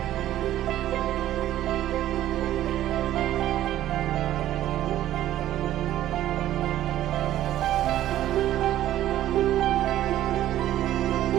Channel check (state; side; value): quieter; left; 13.1 dB